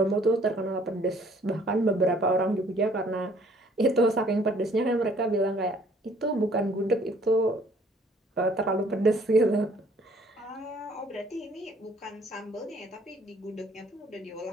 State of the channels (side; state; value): both; normal; correlation 0.59